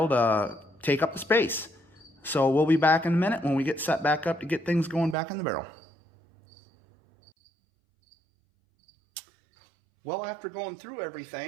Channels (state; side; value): drops out; left; at 5.2 s